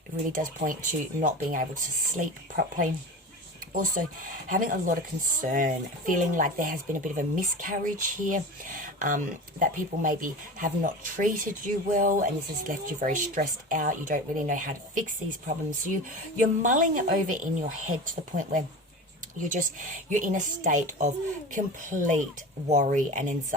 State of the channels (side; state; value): both; normal; correlation 0.31